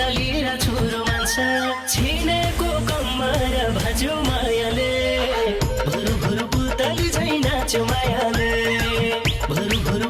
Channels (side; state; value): both; identical; correlation 1.00